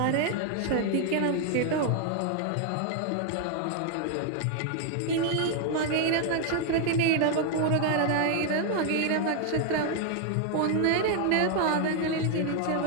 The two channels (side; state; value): both; different; correlation 0.00